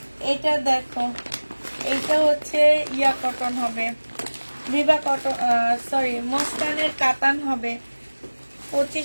এটা দেখো, এইটা হচ্ছে ইয়া কটন হবে, বিবা কটন, সরি মসকানের কাতান হবে।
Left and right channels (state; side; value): inverted; both; correlation -1.00